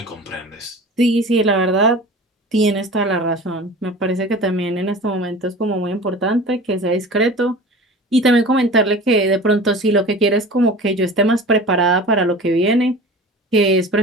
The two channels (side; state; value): both; normal; correlation 0.38